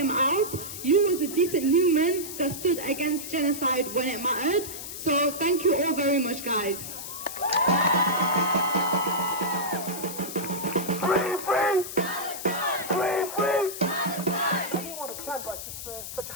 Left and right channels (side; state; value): left; noise; hiss, 9 dB below the sound